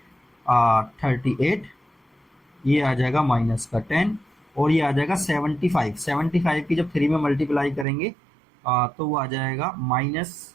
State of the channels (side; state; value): left; drops out; at 7.9 s